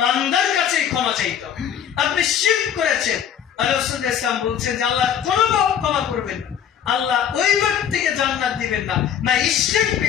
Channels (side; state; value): right; quieter; 9.0 dB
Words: বান্দার কাছেই ক্ষমা চাইতে হবে। আপনি শিরক করেছেন, রাসূল ইসলাম বলছেন যে আল্লাহ কোনো ক্ষমা করবেন না, আল্লাহ ওই ব্যক্তিকে জান্নাত দিবেন না, না ইশরিক